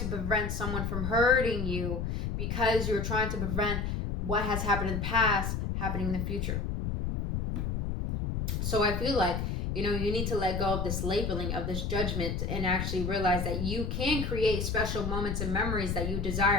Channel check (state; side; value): noise; left; rumble, 2 dB below the sound